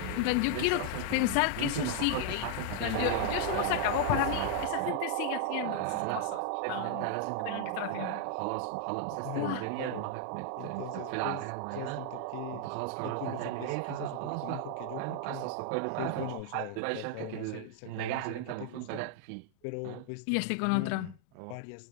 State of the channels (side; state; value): both; different; correlation 0.00